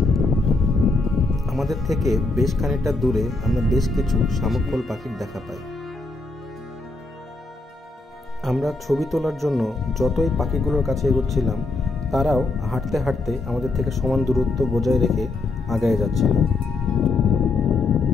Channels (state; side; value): quieter; right; 3.3 dB